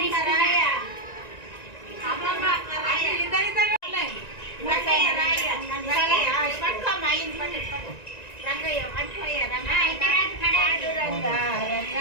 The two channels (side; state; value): right; late; 1.9 ms